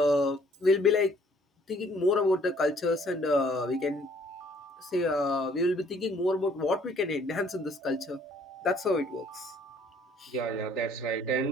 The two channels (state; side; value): normal; both; correlation 0.61